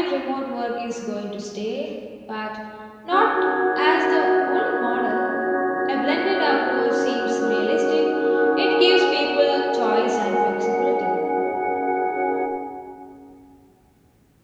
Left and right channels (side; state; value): both; identical; correlation 1.00